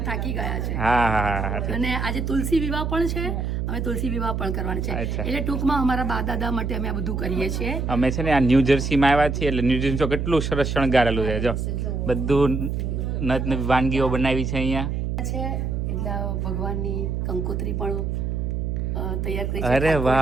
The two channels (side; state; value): right; noise; hum, 1 dB below the sound